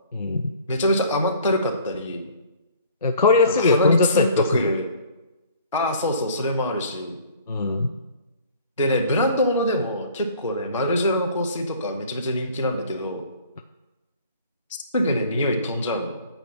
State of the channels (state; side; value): inverted; both; correlation -0.51